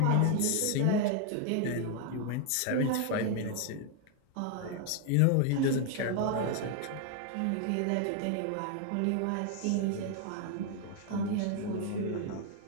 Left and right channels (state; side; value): different; both; correlation 0.00